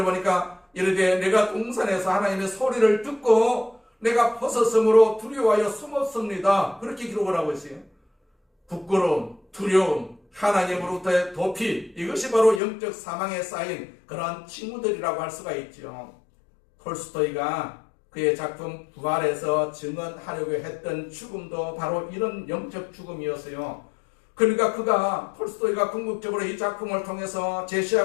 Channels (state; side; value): drops out; right; at 12.6 s